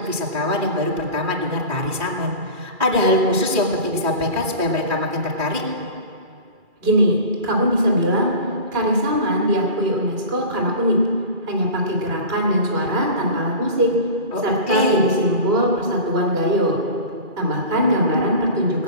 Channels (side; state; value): left; late; 2.4 ms